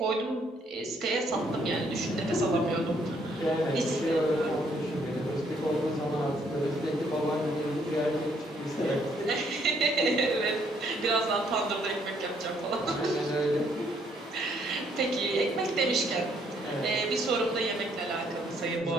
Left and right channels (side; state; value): both; normal; correlation 0.68